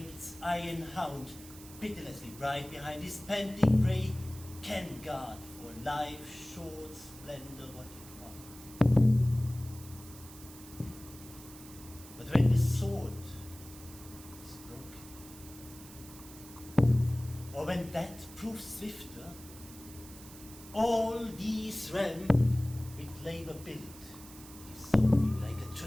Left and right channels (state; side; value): noise; right; hiss, 17 dB below the sound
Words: its iron hound, pitilessly bright behind his panting prey, can guard for life's short splendor what it was. But when the sword is broken, or when that proves swifter, all these realms with labor built, dissolving like a